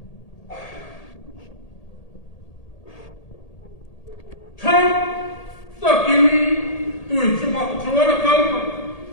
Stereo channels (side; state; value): right; late; 1.8 ms